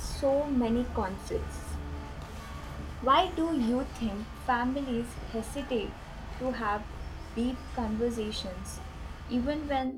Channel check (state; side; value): identical; both; correlation 1.00